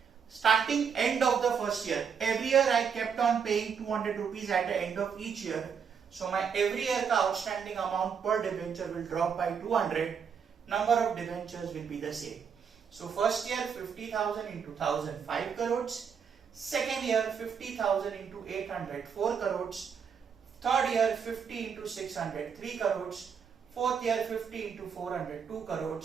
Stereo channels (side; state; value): left; quieter; 6.7 dB